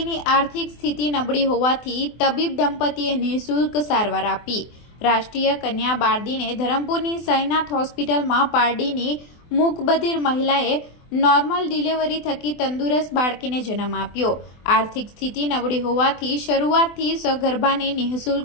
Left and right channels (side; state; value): right; late; 24 ms